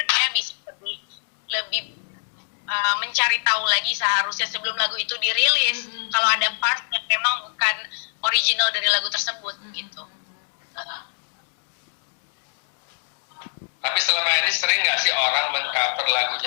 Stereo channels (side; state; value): right; silent; digital silence